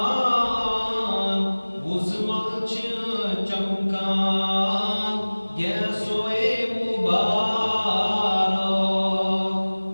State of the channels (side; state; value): both; inverted; correlation -1.00